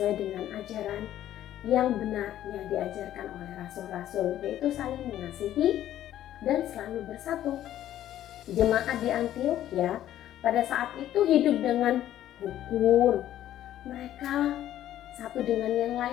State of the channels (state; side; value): quieter; right; 12.3 dB